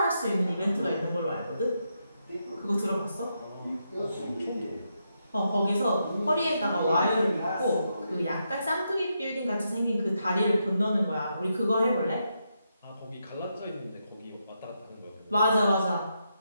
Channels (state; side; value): inverted; both; correlation -0.83